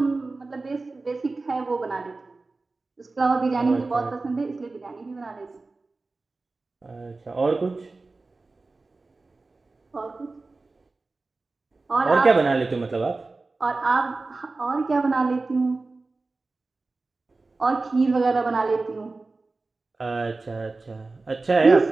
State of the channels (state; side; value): quieter; left; 3.6 dB